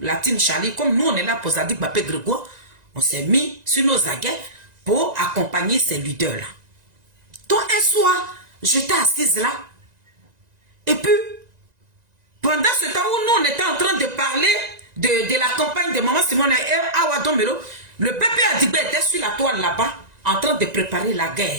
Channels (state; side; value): late; left; 1.9 ms